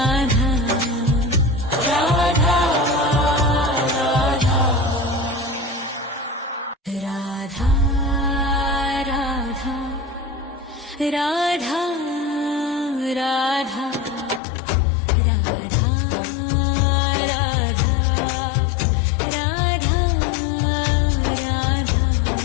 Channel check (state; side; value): drops out; right; at 14.4 s